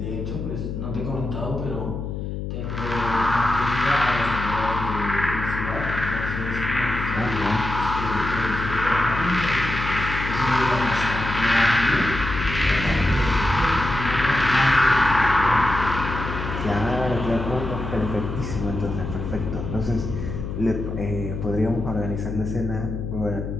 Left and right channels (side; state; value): left; noise; hum, 5 dB below the sound